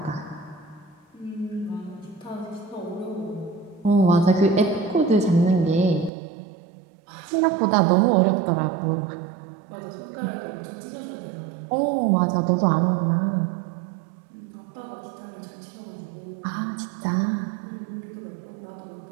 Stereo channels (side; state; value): left; drops out; at 6.1 s